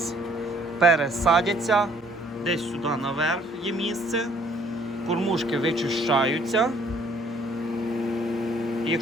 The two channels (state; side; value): normal; both; correlation 0.61